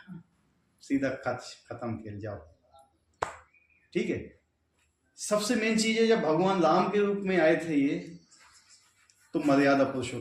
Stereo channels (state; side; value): identical; both; correlation 1.00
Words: सीधा खत्म खेल जाओ। ठीक है, सबसे मेन चीज है जब भगवान राम के रूप में आए थे ये, तो मर्यादा